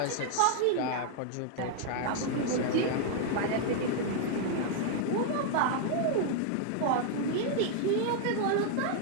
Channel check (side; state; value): both; different; correlation 0.00